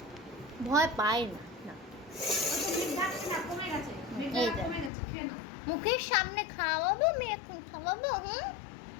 ভয় পায় না, না। এই দেখ। মুখের সামনে খাওয়াবো, আমি এখন খাওয়াবো।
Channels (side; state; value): right; drops out; at 4.9 s